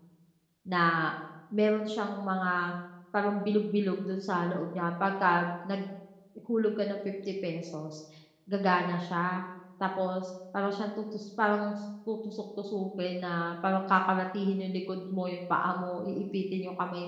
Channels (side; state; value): both; identical; correlation 1.00